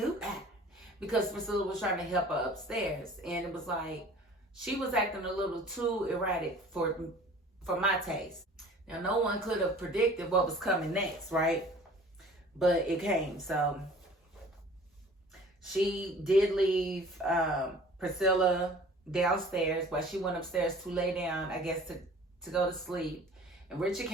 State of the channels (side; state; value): both; normal; correlation 0.47